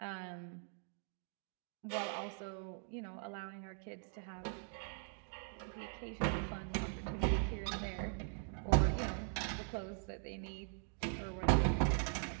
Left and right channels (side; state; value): left; silent; 50 dB below the other